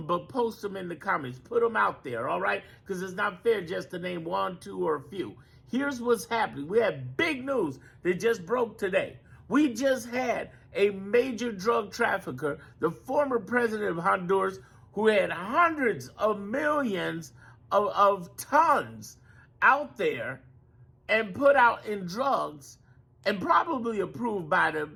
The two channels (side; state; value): both; identical; correlation 1.00